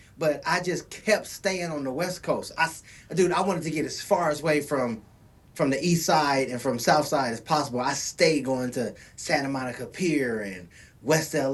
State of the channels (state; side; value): identical; both; correlation 1.00